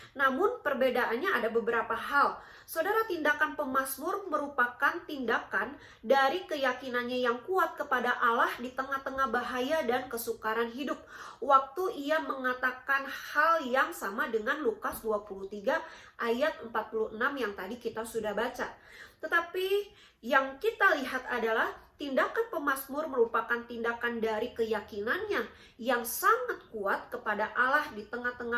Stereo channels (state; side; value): identical; both; correlation 1.00